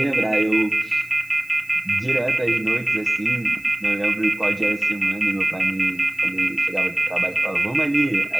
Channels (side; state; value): left; noise; hiss, 25 dB below the sound